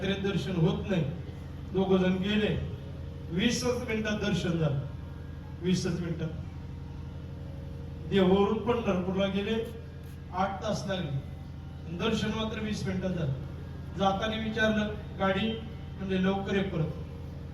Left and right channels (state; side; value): identical; both; correlation 1.00